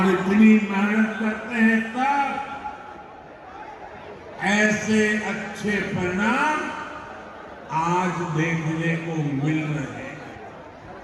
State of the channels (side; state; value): both; identical; correlation 1.00